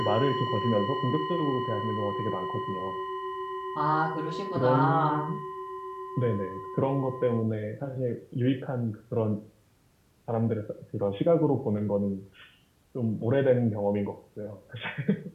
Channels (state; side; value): identical; both; correlation 1.00